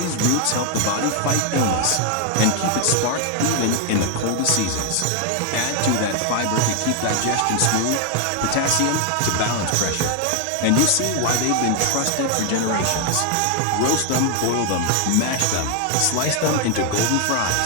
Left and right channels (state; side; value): different; both; correlation 0.01